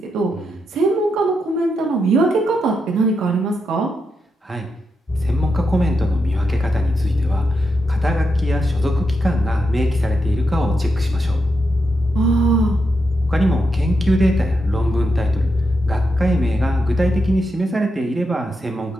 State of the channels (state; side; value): normal; both; correlation 0.84